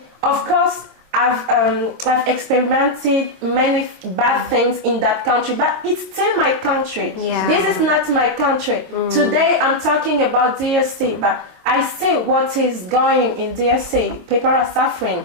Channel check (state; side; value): late; left; 22 ms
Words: Of course, I've experimented many bad things in that country, but it's still my country. This is not my country. Today, I'm talking about DRC, but I see what is going in DRC. People are suffering.